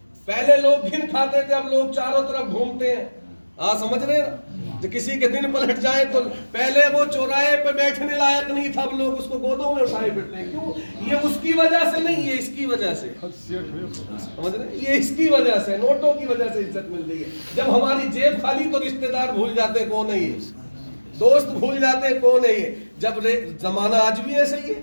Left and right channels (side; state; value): both; inverted; correlation -1.00